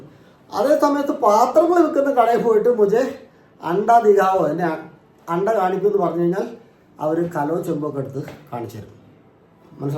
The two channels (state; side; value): identical; both; correlation 1.00